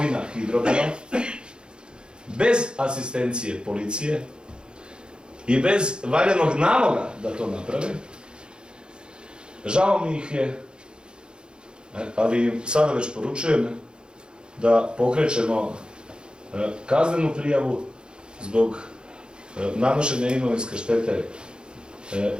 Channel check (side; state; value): left; late; 0.050 ms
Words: Hidrograda, bez asistencije policije i bez valjanog naloga da to naprave, žao mi ih je, ali sada već poručujem da pokrećemo kaznenu prijavu zbog nanošenja imovinske štete